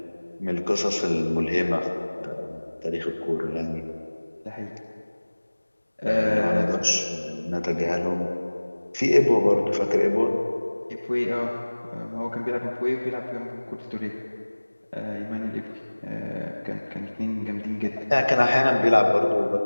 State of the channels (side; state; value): both; inverted; correlation -1.00